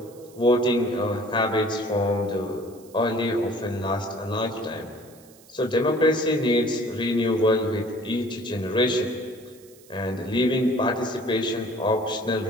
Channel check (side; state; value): right; noise; hiss, 25 dB below the sound